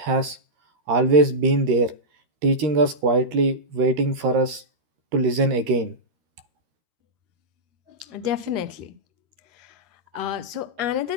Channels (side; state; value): left; late; 13 ms